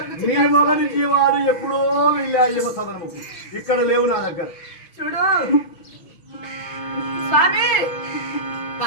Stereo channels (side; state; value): right; late; 6.2 ms